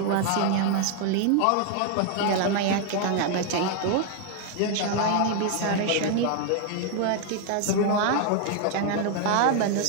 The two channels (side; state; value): both; different; correlation 0.00